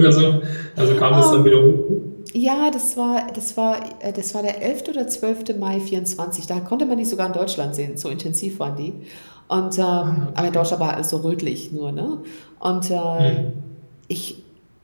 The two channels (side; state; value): both; inverted; correlation -1.00